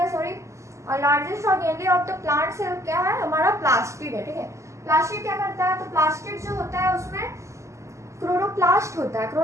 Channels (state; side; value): late; left; 0.14 ms